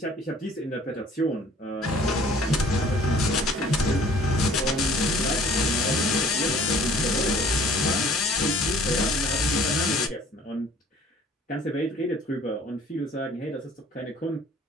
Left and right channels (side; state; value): both; normal; correlation 0.53